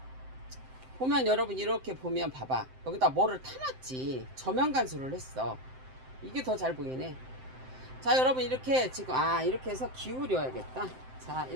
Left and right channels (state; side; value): late; left; 7.7 ms